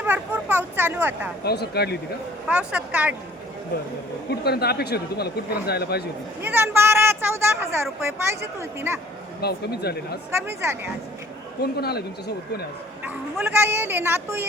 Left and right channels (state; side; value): normal; both; correlation 0.55